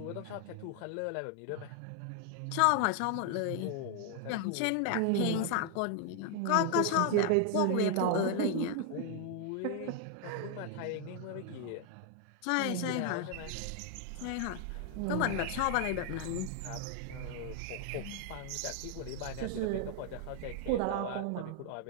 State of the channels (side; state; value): both; different; correlation 0.00